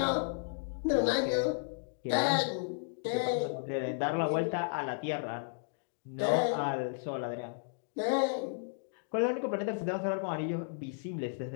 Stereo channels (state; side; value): silent; right; digital silence